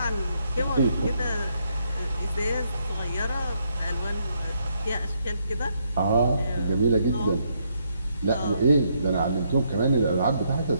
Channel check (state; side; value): inverted; both; correlation -0.75